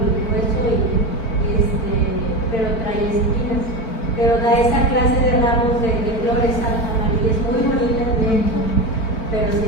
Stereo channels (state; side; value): late; right; 4.5 ms